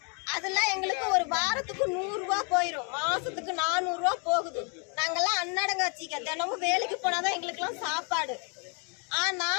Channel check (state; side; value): quieter; right; 37.1 dB